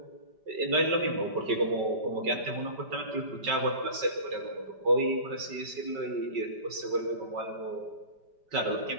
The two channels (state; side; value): late; left; 5.3 ms